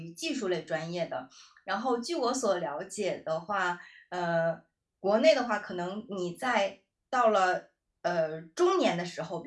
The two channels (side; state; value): both; identical; correlation 1.00